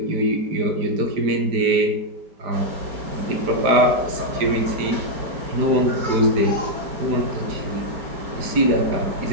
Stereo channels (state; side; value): late; left; 4.9 ms